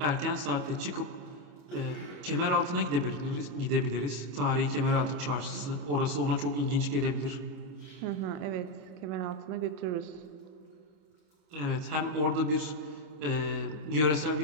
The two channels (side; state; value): left; late; 26 ms